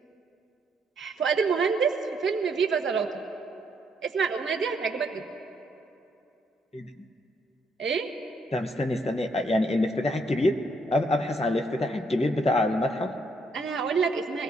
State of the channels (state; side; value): normal; both; correlation 0.72